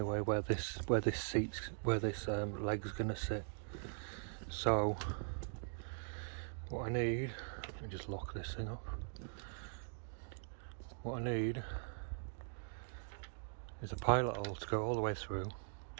where this leg's gonna sit. So what I need, let me just lock this thing up. What I need is a pilot hole to go all the way through.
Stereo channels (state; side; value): silent; left; digital silence